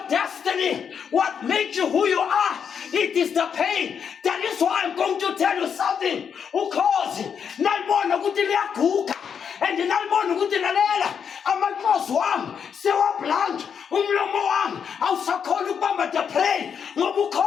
destiny? What makes you who you are? It is the pain. That is why I'm going to tell you something. Ukhozi nalibona ukuthi liyaguga and nalibona ukuthi lalela amakhosi wami sewablank umlomo wami awusakhona ukubamba the prey ngoba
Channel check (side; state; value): right; quieter; 7.2 dB